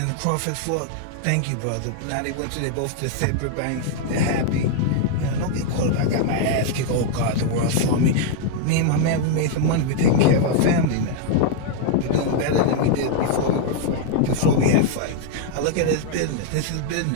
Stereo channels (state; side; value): different; both; correlation 0.00